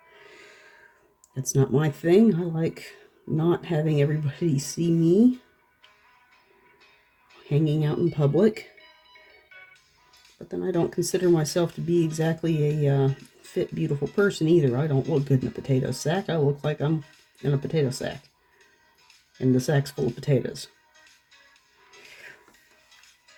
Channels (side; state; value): both; identical; correlation 1.00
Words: That's not my thing. I like not having everybody see me hanging out in public. But then I don't consider myself to be exactly a fit, beautiful person either. I don't look good in a potato sack. I look like I'm in a potato sack. And the sack's full of potatoes.